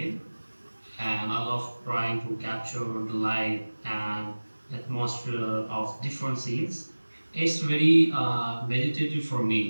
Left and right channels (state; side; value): inverted; both; correlation -1.00